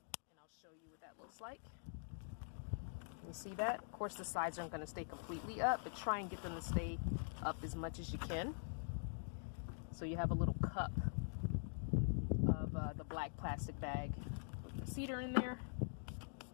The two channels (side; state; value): right; silent; digital silence